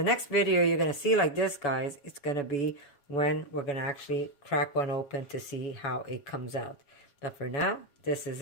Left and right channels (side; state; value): right; late; 7.0 ms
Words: next video you're going to see like this, guys, it's going to be when we're going to actually crack one open to see how it comes out. But for now, this is